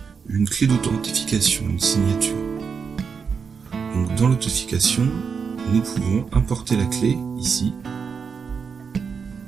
une clé d'authentification, une signature. Donc dans l'authentification, nous pouvons importer la clé ici,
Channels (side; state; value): left; quieter; 5.9 dB